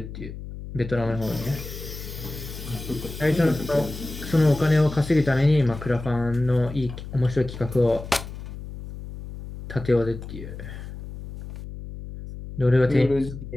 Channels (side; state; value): left; noise; hum, 11 dB below the sound